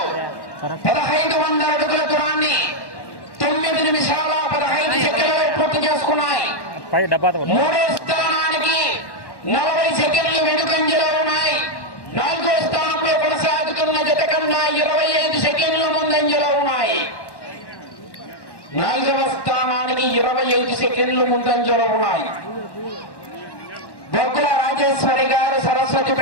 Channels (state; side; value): late; right; 1.1 ms